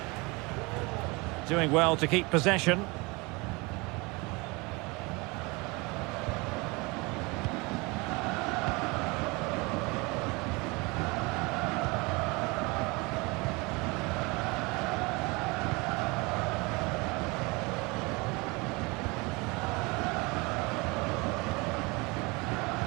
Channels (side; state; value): left; quieter; 26.1 dB